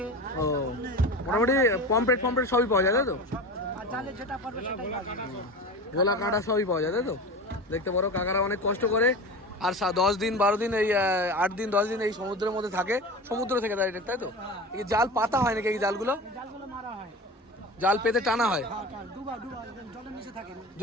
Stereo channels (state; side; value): normal; both; correlation 0.30